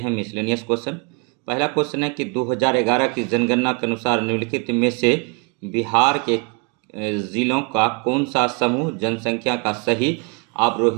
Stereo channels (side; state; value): left; quieter; 33.3 dB